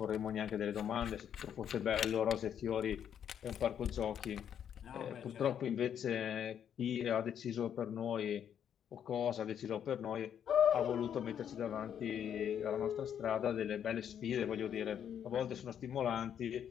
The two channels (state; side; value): quieter; right; 8.9 dB